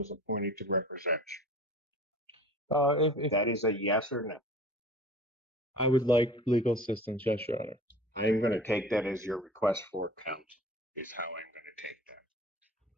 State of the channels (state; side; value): normal; both; correlation 0.42